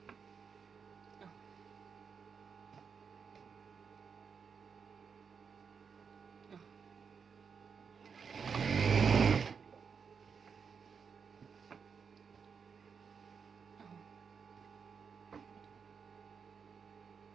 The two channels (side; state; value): left; quieter; 6.1 dB